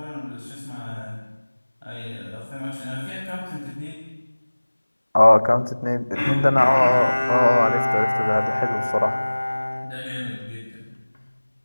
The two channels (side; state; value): both; inverted; correlation -1.00